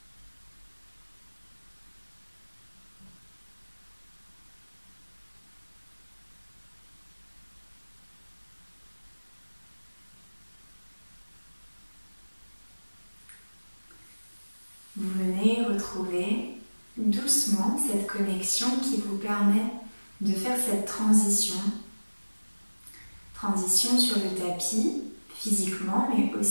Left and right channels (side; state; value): both; inverted; correlation -1.00